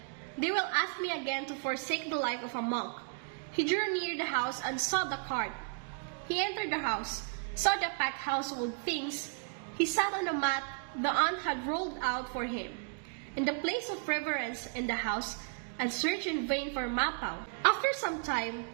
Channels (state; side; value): quieter; left; 38.3 dB